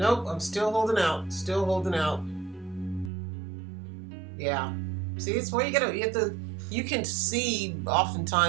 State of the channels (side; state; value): left; drops out; at 3.1 s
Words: I'm still holding out. Still holding out. Yeah. See, it's where you can see